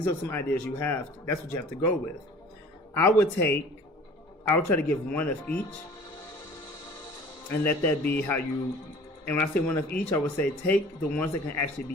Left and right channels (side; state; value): both; normal; correlation 0.47